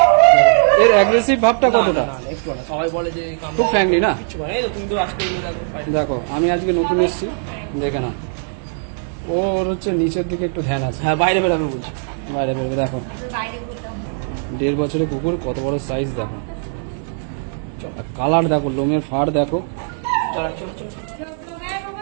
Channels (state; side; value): silent; left; 66 dB below the other